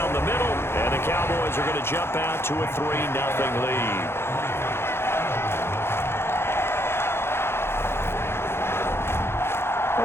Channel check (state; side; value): late; right; 0.12 ms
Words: the middle. And the Cowboys are going to jump out to a 3-0 lead.